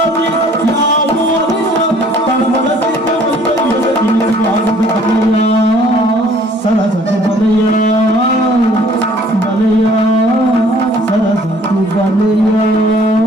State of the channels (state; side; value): normal; both; correlation 0.56